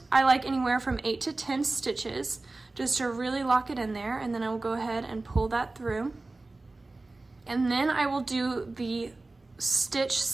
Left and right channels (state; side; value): quieter; left; 3.2 dB